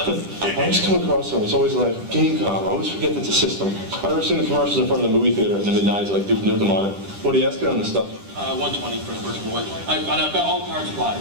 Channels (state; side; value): late; left; 10 ms